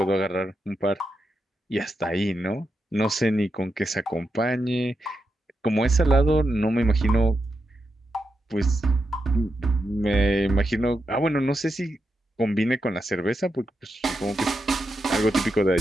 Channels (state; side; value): normal; both; correlation 0.86